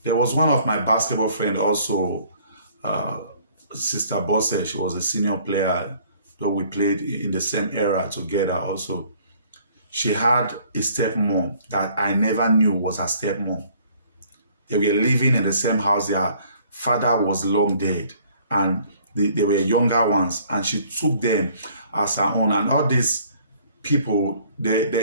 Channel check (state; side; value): inverted; both; correlation -0.58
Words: There was one of my basketball friends also, Sister Bosse. She was a senior player, though we played in the same era together also. She had a stepmom that I never knew was her stepmom. They were living in the same house. Their father was long dead, and they were younger ones, and she took them as her own. And all these people,